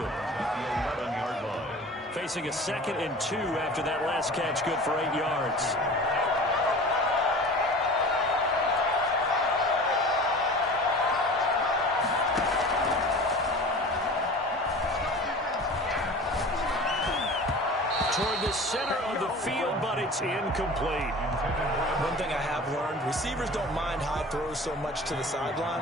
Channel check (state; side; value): normal; both; correlation 0.39